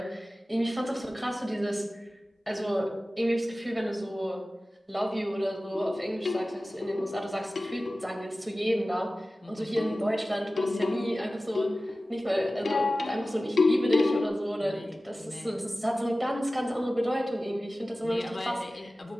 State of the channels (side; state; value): both; normal; correlation 0.96